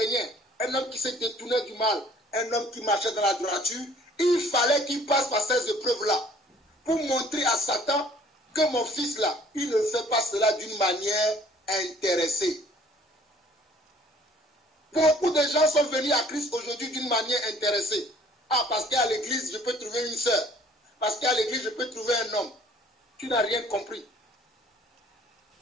un homme qui se détournait du mal, un homme qui marchait dans la droiture, il fallait qu'il passe par ces épreuves-là pour montrer à Satan que mon fils là, il ne fait pas cela d'une manière intéressée. Beaucoup de gens sont venus à Christ aujourd'hui d'une manière intéressée. Ah, parce qu'à l'église, je peux trouver une sœur. Parce qu'à l'église, je peux trouver un homme. Tu n'as rien compris.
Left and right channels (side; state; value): both; normal; correlation 0.55